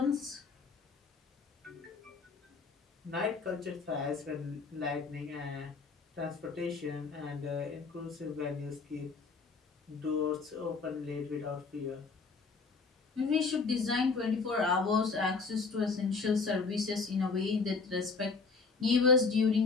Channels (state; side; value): quieter; right; 4.6 dB